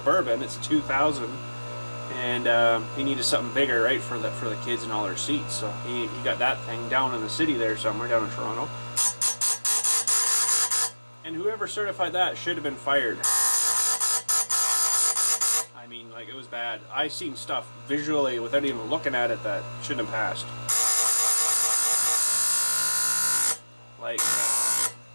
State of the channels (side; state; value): both; inverted; correlation -1.00